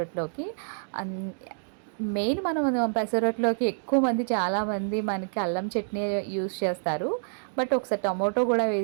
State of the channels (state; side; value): silent; left; digital silence